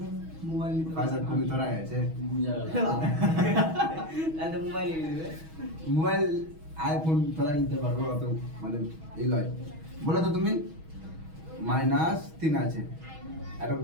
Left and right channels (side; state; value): left; late; 6.3 ms